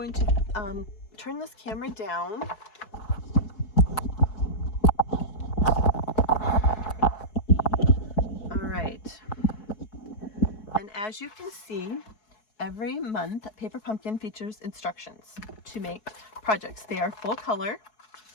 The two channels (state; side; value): late; right; 4.7 ms